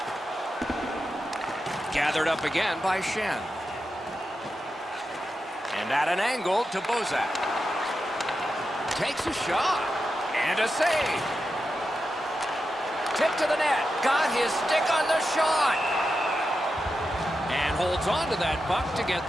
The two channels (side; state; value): both; normal; correlation 0.89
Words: Gathered up again by Shen. And at an angle to Bozak. Takes a shot. And a save. Tip to the net. Got his stick on the shot. And holds on to that puck to get